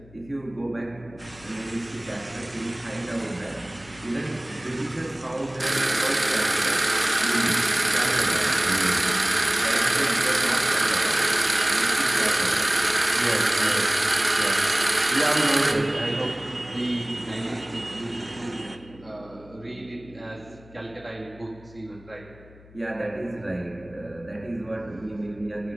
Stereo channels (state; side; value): noise; left; hum, 23 dB below the sound